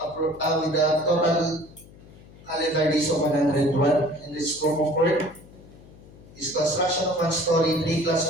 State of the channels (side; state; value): left; noise; hum, 22 dB below the sound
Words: calendar days of 101, and the scope of work is construction of one-story, 3